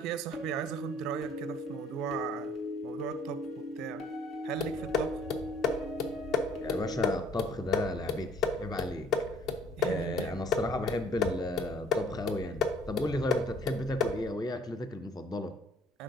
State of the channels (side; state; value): both; normal; correlation 0.57